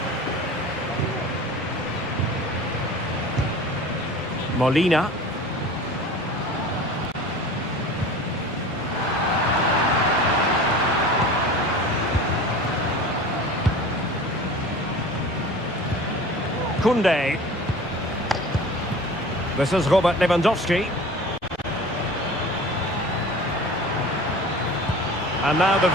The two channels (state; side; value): normal; both; correlation 0.39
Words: Molina. Koundé. This is Robert Lewandowski. And now the